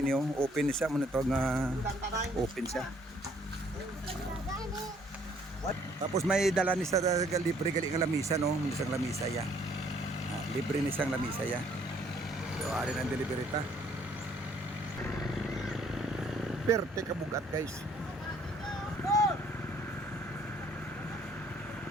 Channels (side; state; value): both; normal; correlation 0.63